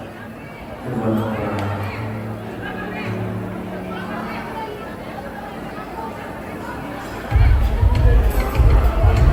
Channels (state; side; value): identical; both; correlation 1.00